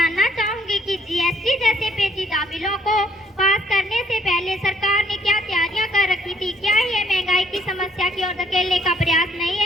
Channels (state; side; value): normal; both; correlation 0.66